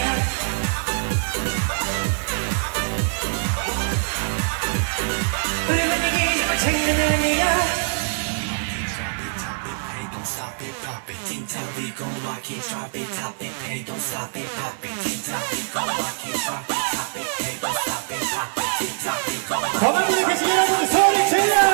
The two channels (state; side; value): silent; left; digital silence